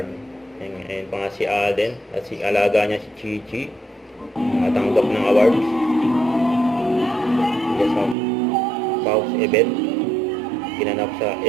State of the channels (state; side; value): drops out; left; at 8.2 s